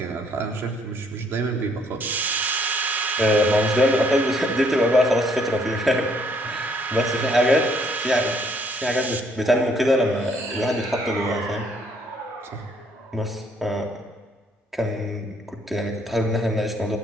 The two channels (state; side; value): normal; both; correlation 0.66